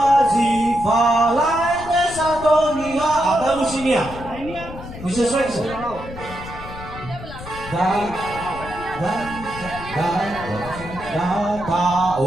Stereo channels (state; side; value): noise; left; rumble, 13 dB below the sound